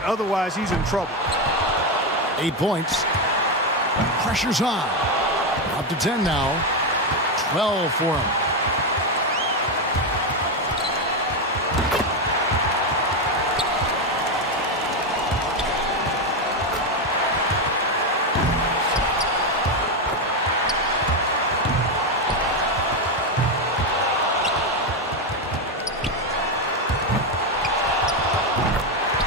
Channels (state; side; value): normal; both; correlation 0.08